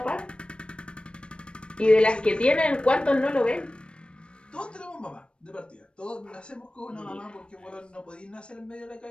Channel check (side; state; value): right; late; 0.057 ms